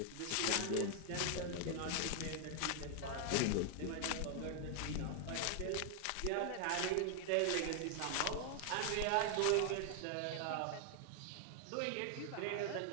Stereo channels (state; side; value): different; both; correlation 0.00